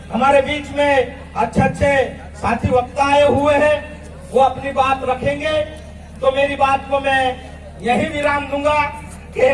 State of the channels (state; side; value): identical; both; correlation 1.00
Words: हमारे बीच में अच्छे साथी वक्ता आए हुए हैं, वो अपनी बात रखेंगे। तो मेरी बात को मैं यही विराम दूंगा।